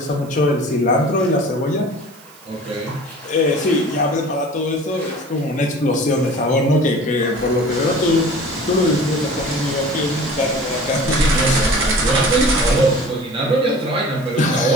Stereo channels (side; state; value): right; noise; hiss, 25 dB below the sound